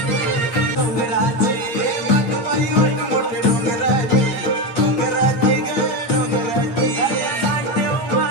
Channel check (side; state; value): right; late; 8.7 ms